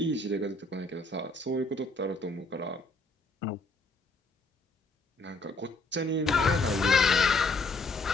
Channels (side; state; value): right; quieter; 3.0 dB